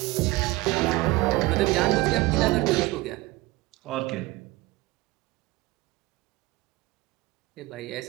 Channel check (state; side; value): quieter; left; 20.6 dB